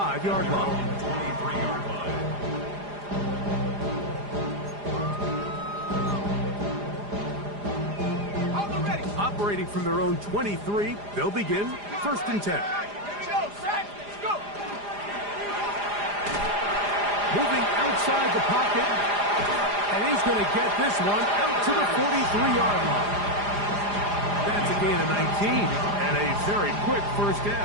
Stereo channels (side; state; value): left; late; 4.9 ms